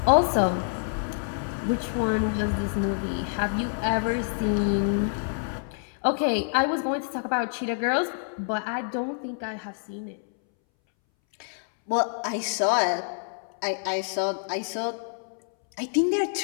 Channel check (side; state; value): right; silent; 60 dB below the other